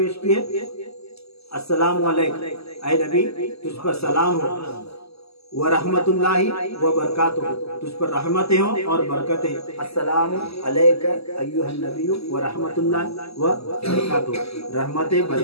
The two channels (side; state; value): right; late; 0.78 ms